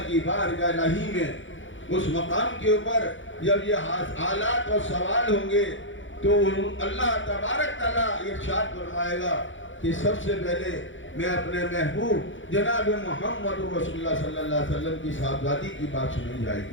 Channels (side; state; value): right; late; 0.56 ms